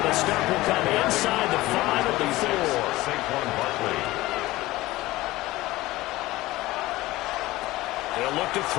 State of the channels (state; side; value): quieter; right; 18.3 dB